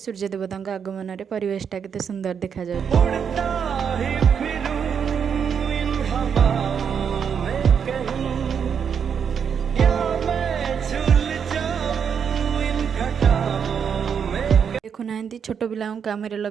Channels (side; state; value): left; quieter; 7.2 dB